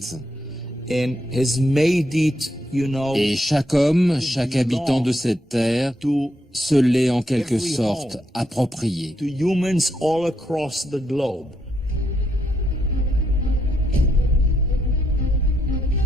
Et chaque homme, chaque habitant de cette terre se l'est en quelque sorte approprié.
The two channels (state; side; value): normal; both; correlation 0.78